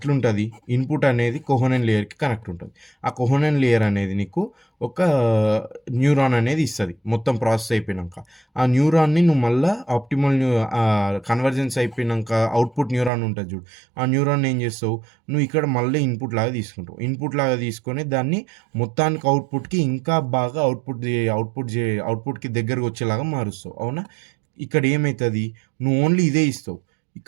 ఇన్పుట్ అనేది కోహనెన్ లేయర్కి కనెక్ట్ ఉంటుంది. ఆ కోహనెన్ లేయర్ అనేది నీకు ఒక న్యూరాన్ అనేది ఇస్తుంది మొత్తం ప్రాసెస్ అయిపోయినాక. ఆ న్యూరాన్ని నువ్వు మళ్ళీ ఆప్టిమల్ కన్వర్జెన్స్ అయిపోయినాక అవుట్పుట్ న్యూరాన్ ఉంటుంది చూడు, ఆ న్యూరాన్ ఏం చేస్తావు? నువ్వు ఇక్కడ మళ్ళీ ఇన్పుట్ లాగా తీసుకుంటావు. ఇన్పుట్ లాగా తీసుకొని దాన్ని మొత్తానికి అవుట్పుట్కి ఇంకా బాగా అవుట్పుట్కి దగ్గరకు వచ్చేలాగా మారుస్తావు. అవునా? ఇక్కడ ఏమవుతుంది? నువ్వు ఓన్లీ ఇదే ఇస్తావు.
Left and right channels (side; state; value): left; drops out; at 13.1 s